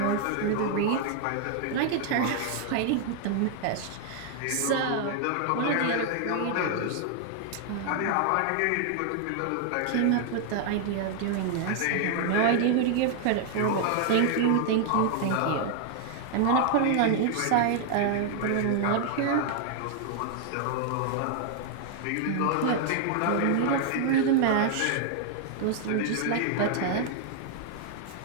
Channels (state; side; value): different; both; correlation 0.00